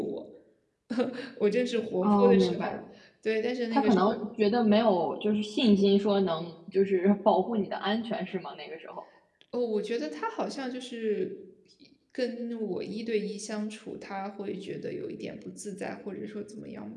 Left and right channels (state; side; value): identical; both; correlation 1.00